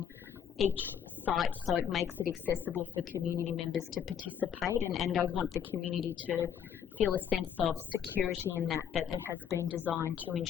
each site so it makes it accessible for community members to participate, and I'd want the community to feel a sense of security in that it has been designed to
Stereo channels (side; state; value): right; quieter; 8.4 dB